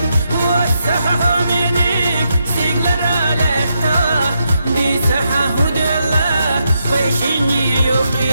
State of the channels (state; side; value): inverted; both; correlation -0.82